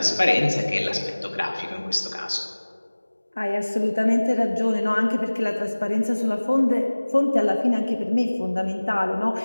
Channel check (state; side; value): inverted; both; correlation -1.00